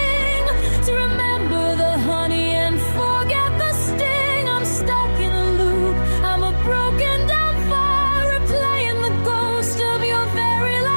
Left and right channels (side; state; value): both; inverted; correlation -1.00